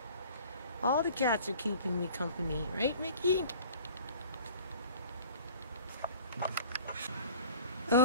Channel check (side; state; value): both; inverted; correlation -0.47